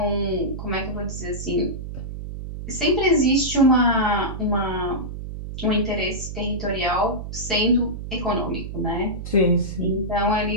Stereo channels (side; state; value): right; noise; hum, 8 dB below the sound